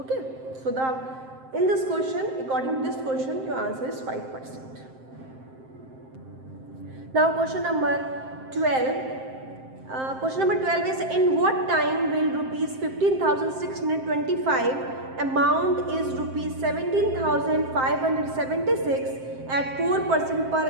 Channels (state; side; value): late; left; 7.6 ms